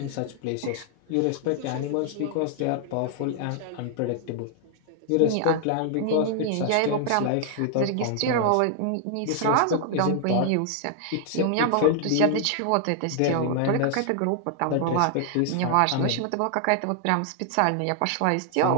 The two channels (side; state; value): both; different; correlation 0.00